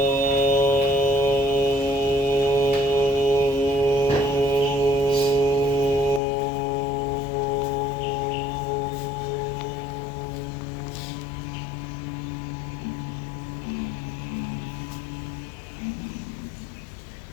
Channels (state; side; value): drops out; right; at 6.2 s